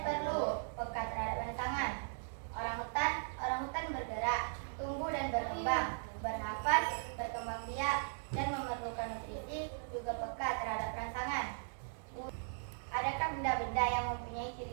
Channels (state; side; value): silent; left; digital silence